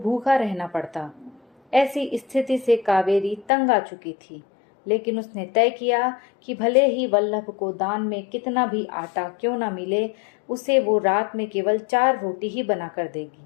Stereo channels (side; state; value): right; drops out; at 3.5 s